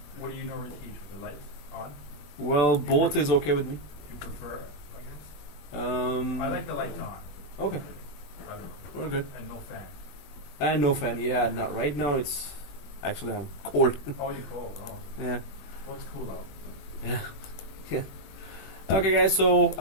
What do you normally teach with the lights on? Well, both is okay with me. Do you prefer, I guess? I like the lights on. Okay, I don't know. we're good. And no fan. And no fan. Yeah, not right now. It's actually I'm cold. Oh, you're cold. Oh. Yeah. What's cool out? Yeah. Yeah. Okay, guys.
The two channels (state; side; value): late; right; 21 ms